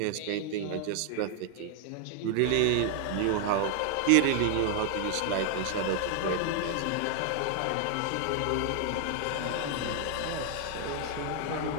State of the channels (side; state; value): both; different; correlation 0.00